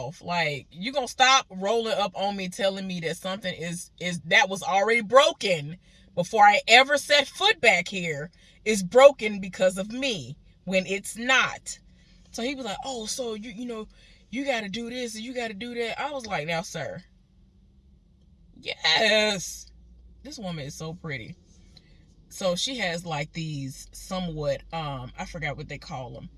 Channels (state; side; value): identical; both; correlation 1.00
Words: Like, you gonna stop rolling up on me telling me that something is that was already broken before I ever set foot back here is broken because of me when it's not. So he was like, oh, so you got to do this and you got to do that. I was like, now, sir, yes, this woman is so pretty. So she has like these somewhat, I forgot what they call them,